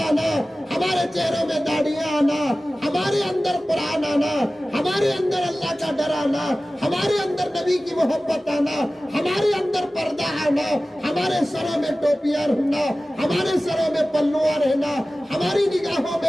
हमारे चेहरों में दाढ़ियां आना, हमारे अंदर कुरान आना, हमारे अंदर अल्लाह का डर आना, हमारे अंदर नबी की मोहब्बत आना, हमारे अंदर पर्दा आना, हमारे सरों में टोपियां रहना, हमारे सरों में पल्लुआ रहना, हमारी निगाहों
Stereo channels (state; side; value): normal; both; correlation 0.96